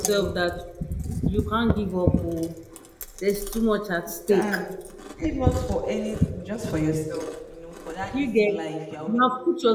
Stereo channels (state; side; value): identical; both; correlation 1.00